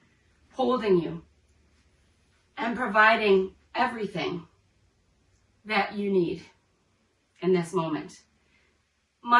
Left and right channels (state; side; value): identical; both; correlation 1.00